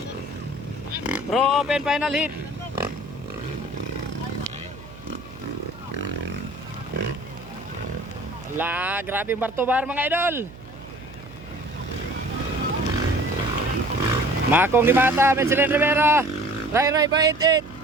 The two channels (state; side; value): noise; right; hum, 18 dB below the sound